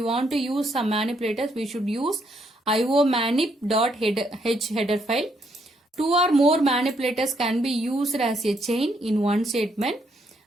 want to use some manipulators, we should use iomanip.h header file. 2 or more manipulators can be used as a chain in one statement.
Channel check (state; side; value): normal; both; correlation 0.73